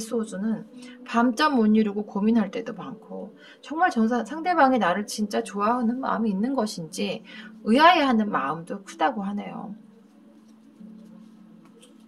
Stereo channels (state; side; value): identical; both; correlation 1.00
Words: 밤잠 못 이루고 고민할 때도 많고, 정말 상대방이 나를 진짜 좋아하는 마음이 있는 것인지 의아해하는 마음도 크다고 하네요.